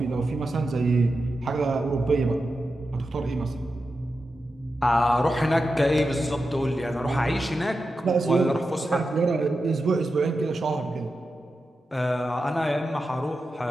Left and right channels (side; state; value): both; normal; correlation 0.90